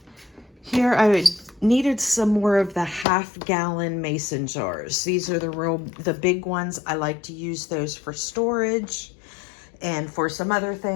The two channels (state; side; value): drops out; right; at 3.1 s